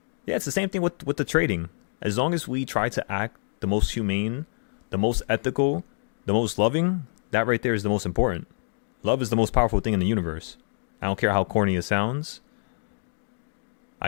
yeah, it's the same thing with the trading. As long as we try to act the most humane, the most ethical, the most loving, that right there is the most important. Love is the most powerful thing in the universe. I don't care how corny it sounds.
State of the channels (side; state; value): right; silent; digital silence